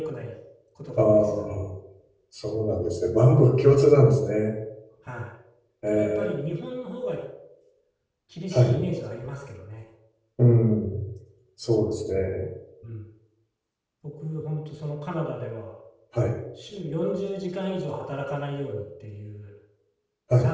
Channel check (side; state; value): both; identical; correlation 1.00